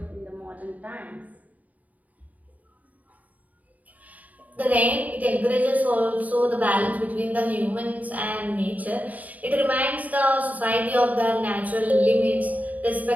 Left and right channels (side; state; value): left; late; 0.074 ms